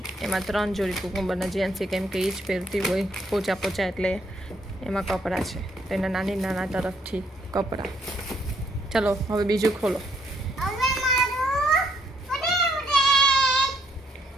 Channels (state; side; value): normal; both; correlation 0.71